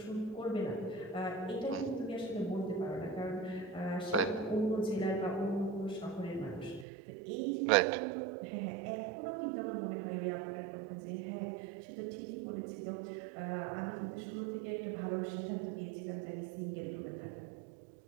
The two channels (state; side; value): drops out; left; at 6.9 s